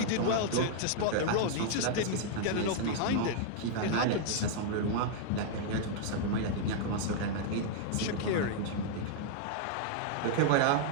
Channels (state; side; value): different; both; correlation -0.01